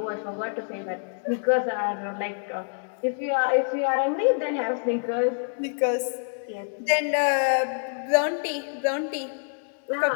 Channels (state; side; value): silent; right; digital silence